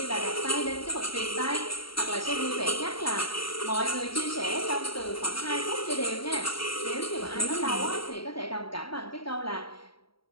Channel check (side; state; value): right; late; 0.74 ms